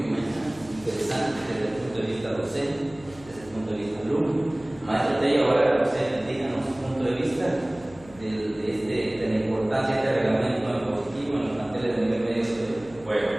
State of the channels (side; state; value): left; noise; hum, 21 dB below the sound